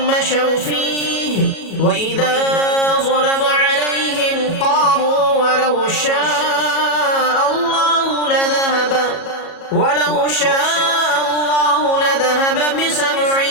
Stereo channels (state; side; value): late; right; 37 ms